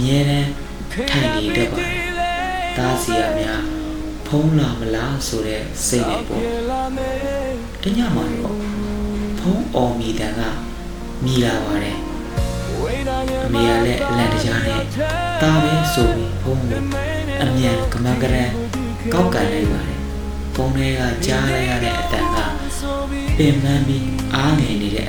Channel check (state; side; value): identical; both; correlation 1.00